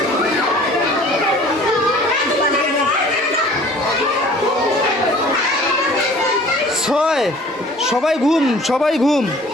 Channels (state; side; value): normal; both; correlation 0.49